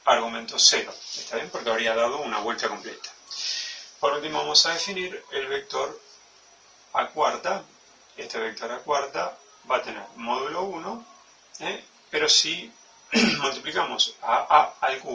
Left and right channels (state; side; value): identical; both; correlation 1.00